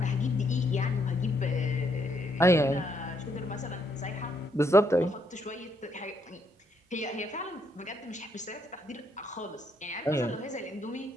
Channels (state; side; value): normal; both; correlation 0.74